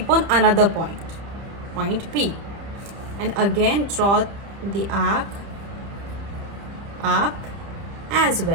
on another point P, and again draw the arc up as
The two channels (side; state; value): left; late; 30 ms